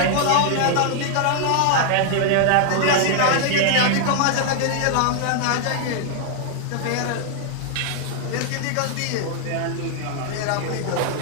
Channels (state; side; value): different; both; correlation 0.00